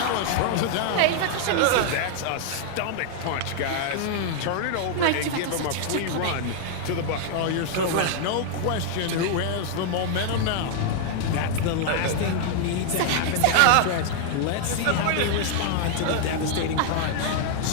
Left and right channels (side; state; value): both; different; correlation 0.00